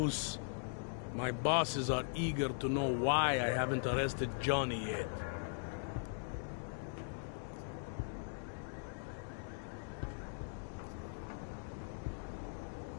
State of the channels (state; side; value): silent; right; digital silence